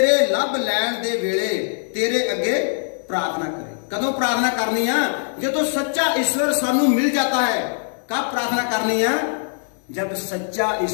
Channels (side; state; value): right; silent; 59 dB below the other